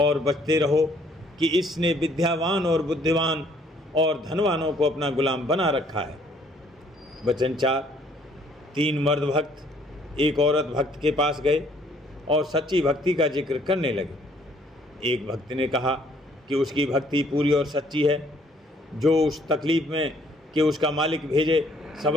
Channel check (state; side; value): normal; both; correlation 0.63